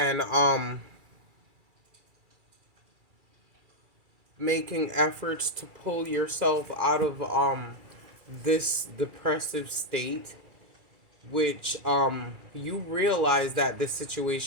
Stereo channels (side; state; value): left; late; 2.4 ms